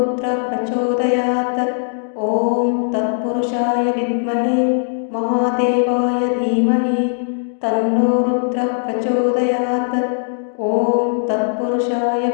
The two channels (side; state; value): right; silent; digital silence